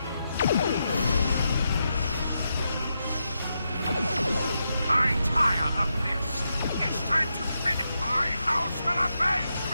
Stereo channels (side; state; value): both; inverted; correlation -0.85